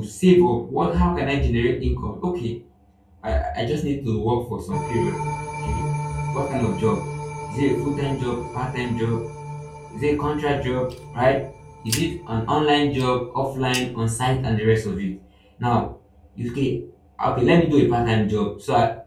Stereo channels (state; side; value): identical; both; correlation 1.00